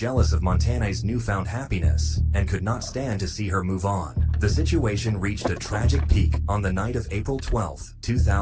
of Montana's newfound happiness and could not stand to see her move on. The situation reached a tragic peak on the night of April 12,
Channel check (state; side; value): identical; both; correlation 1.00